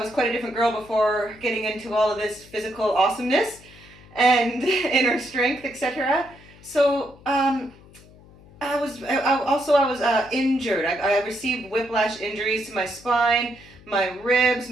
quite a different girl before getting into all of this physical awesomeness and inner strength, etc. So I was injured. I received whiplash injuries to my spine, my ribs,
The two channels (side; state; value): left; noise; hum, 23 dB below the sound